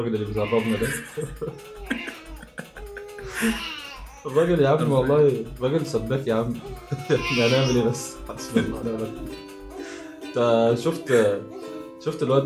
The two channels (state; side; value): identical; both; correlation 1.00